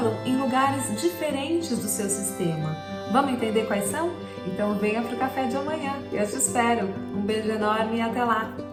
em lugares diferentes do seu sistema. Vamos entender quais são? Então venha para o café de amanhã. Eu te espero. Um beijo enorme e até lá.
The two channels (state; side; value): identical; both; correlation 1.00